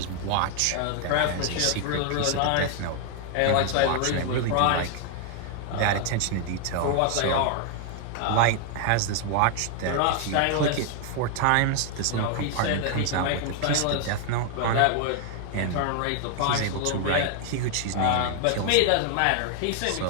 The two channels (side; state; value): both; different; correlation 0.00